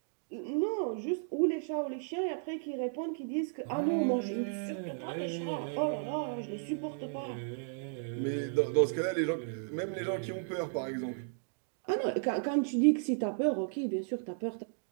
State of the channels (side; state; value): left; silent; digital silence